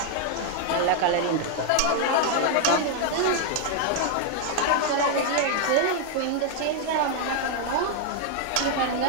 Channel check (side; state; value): both; different; correlation 0.00